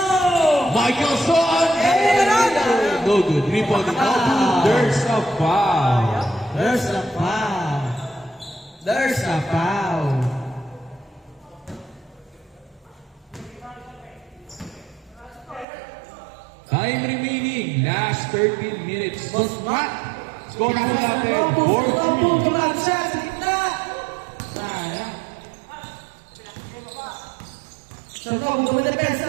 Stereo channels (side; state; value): left; drops out; at 15.7 s